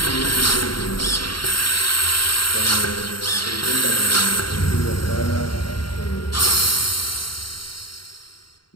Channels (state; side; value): late; right; 0.73 ms